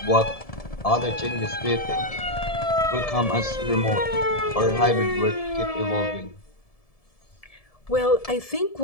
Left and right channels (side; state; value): right; late; 1.7 ms